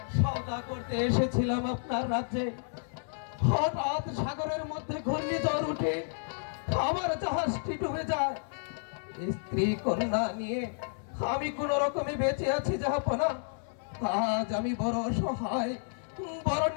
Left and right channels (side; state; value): right; silent; 57 dB below the other